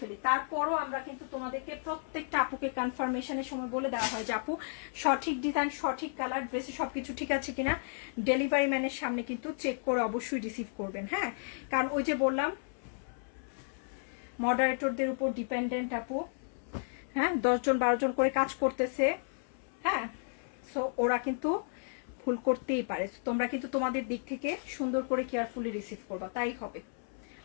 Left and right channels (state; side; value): silent; right; 56 dB below the other